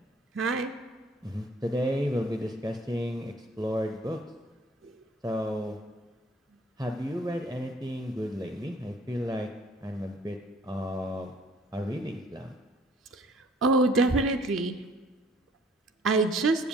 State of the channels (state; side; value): normal; both; correlation 0.57